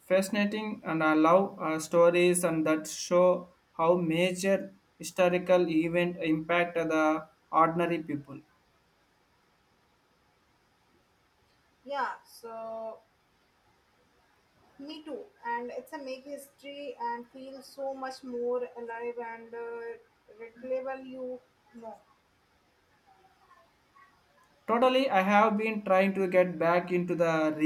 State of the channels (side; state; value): both; identical; correlation 1.00